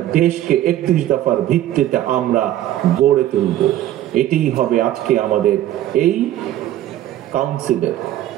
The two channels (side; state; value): left; quieter; 13.1 dB